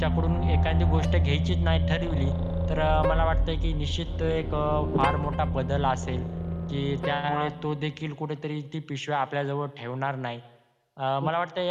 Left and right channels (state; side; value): identical; both; correlation 1.00